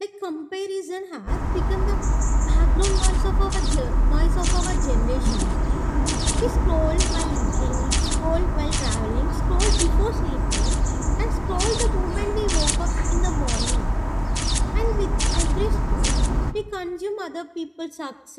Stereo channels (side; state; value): both; identical; correlation 1.00